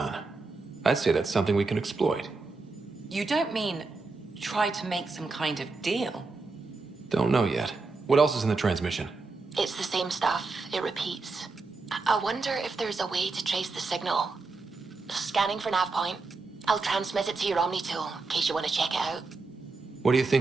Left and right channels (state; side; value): quieter; left; 3.9 dB